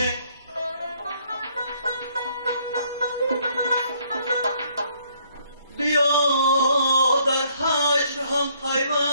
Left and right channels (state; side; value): inverted; both; correlation -0.66